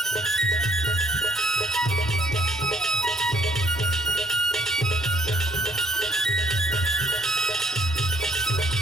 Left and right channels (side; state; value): both; normal; correlation 0.64